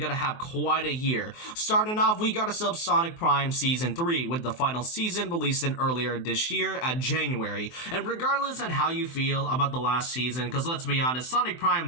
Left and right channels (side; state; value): right; late; 23 ms